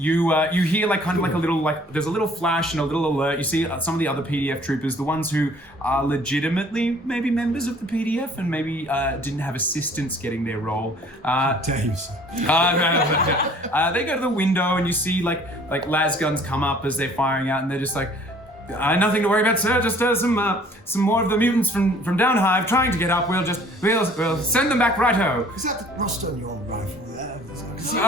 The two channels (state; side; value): normal; both; correlation 0.54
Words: hear like kind of like a little, like, there's a little flash and a little alert. You see some of the other PDF troopers, the ones who are legitimately maybe members of the PDF and maybe didn't have assistance getting their role. Dave's. They go to the window and you see like las guns come up as they're firing out, and they're just like, nothing to worry about, sir. Just some more of the mutants from Downhive trying to get up. We'll send them back righto. Is that rust on your rifle there? No,